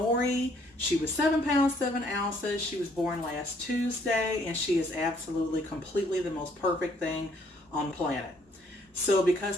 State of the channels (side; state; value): both; normal; correlation 0.65